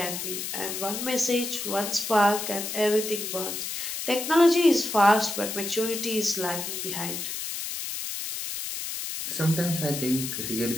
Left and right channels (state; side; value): noise; left; hiss, 5 dB below the sound